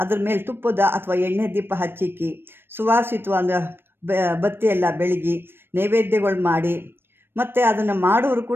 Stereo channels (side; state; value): left; late; 0.10 ms